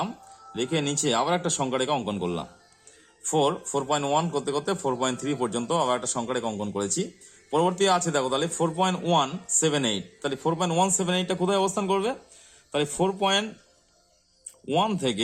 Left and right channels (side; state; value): both; identical; correlation 1.00